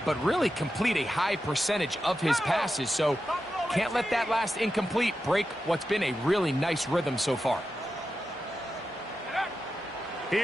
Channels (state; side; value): normal; both; correlation 0.90